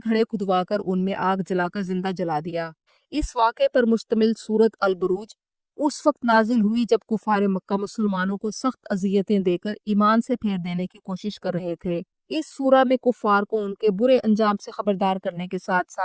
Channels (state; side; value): identical; both; correlation 1.00